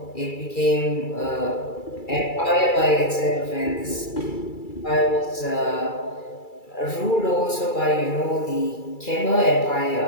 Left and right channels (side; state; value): right; late; 2.3 ms